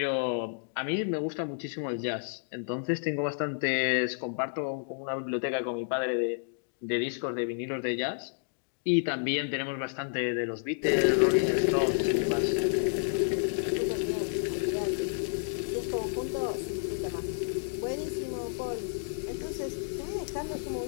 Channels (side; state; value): right; silent; digital silence